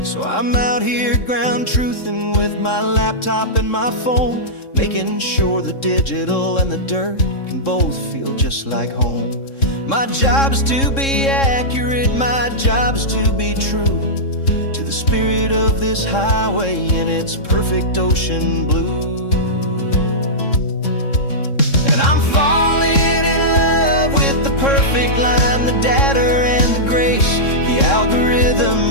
So I'm out here ground truthing with my laptop and my phone, making sure the digital and the dirt can both feel just like home. My job is to be accurate, my job is to be true to the spirit of this highway in its perfect ocean blue. And I'm falling in love with the perfect line, the data and the grace, the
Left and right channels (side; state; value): right; late; 3.7 ms